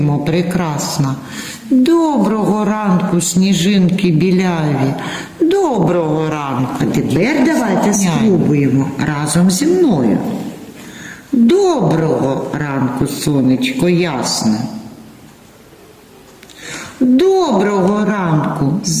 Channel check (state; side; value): identical; both; correlation 1.00